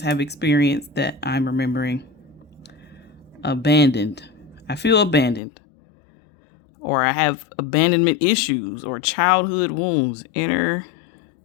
have experienced that I'm remembering: abandoned. I feel abandoned. Or I have abandonment issues or childhood wounds, inner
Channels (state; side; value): drops out; right; at 5.4 s